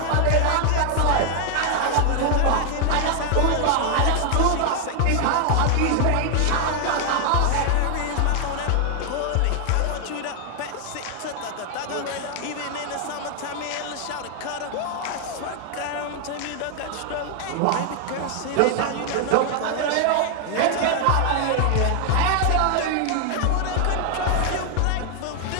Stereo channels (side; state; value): both; different; correlation 0.00